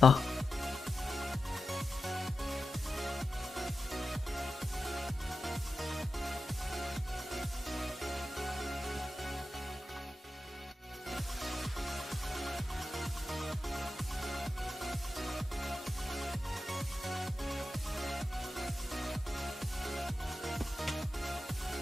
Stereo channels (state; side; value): normal; both; correlation 0.91